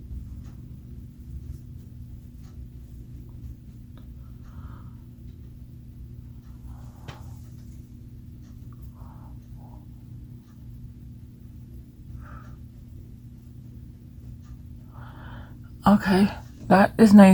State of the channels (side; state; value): both; identical; correlation 1.00